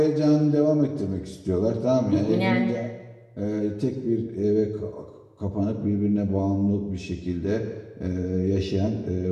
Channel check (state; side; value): identical; both; correlation 1.00